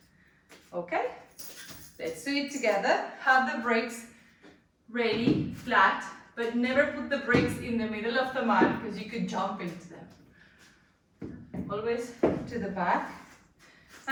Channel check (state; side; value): identical; both; correlation 1.00